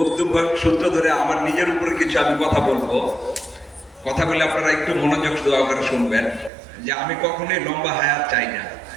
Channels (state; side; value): drops out; left; at 6.5 s